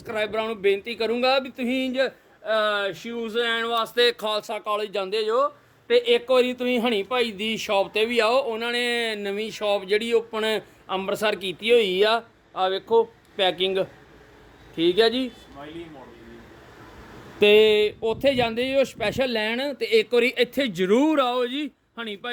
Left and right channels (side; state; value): both; identical; correlation 1.00